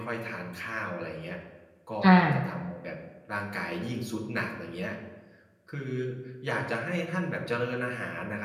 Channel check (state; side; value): identical; both; correlation 1.00